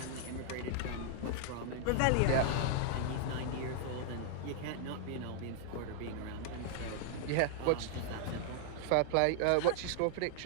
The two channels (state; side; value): different; both; correlation -0.01